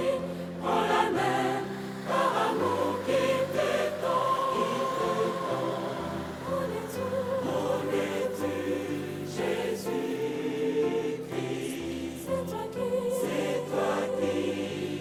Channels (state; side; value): identical; both; correlation 1.00